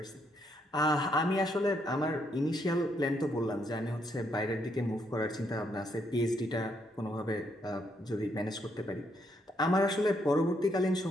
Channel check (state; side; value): normal; both; correlation 0.75